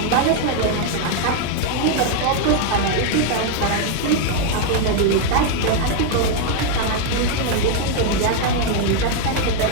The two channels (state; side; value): different; both; correlation 0.00